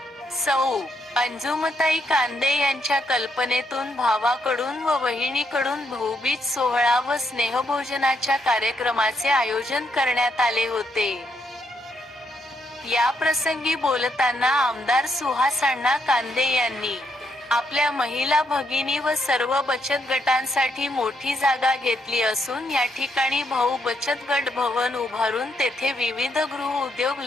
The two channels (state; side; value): normal; both; correlation 0.77